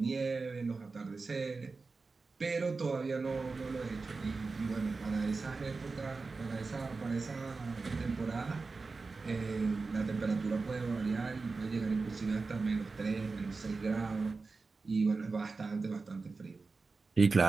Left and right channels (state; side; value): quieter; left; 4.1 dB